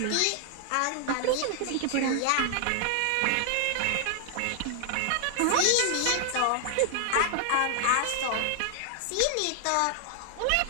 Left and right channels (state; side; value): different; both; correlation 0.00